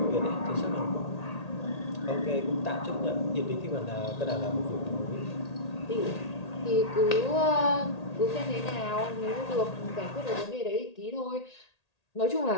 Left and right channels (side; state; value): right; late; 1.8 ms